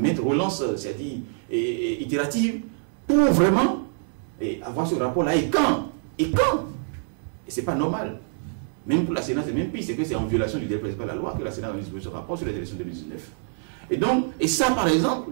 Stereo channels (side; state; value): left; silent; digital silence